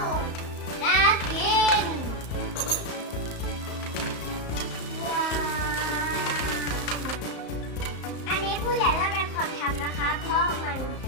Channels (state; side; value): late; right; 34 ms